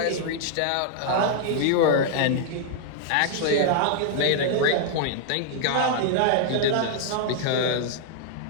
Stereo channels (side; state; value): both; different; correlation -0.01